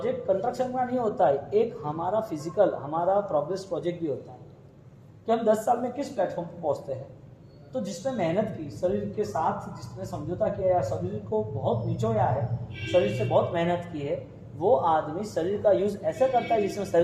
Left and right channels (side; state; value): both; identical; correlation 1.00